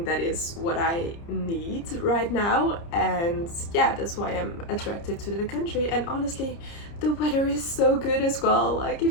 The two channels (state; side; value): late; right; 30 ms